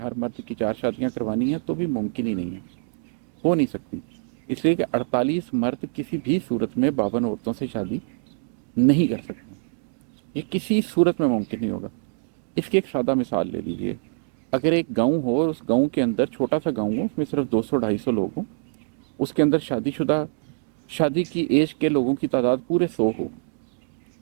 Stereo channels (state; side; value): silent; left; digital silence